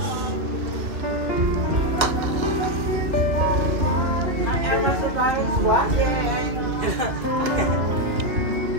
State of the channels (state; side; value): late; left; 2.6 ms